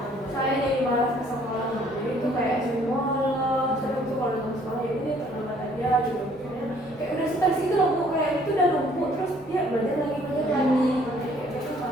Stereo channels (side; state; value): both; normal; correlation 0.60